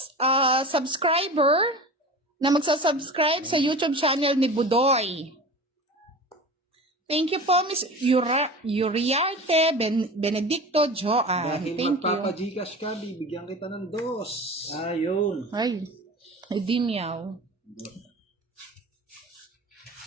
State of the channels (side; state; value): both; normal; correlation 0.34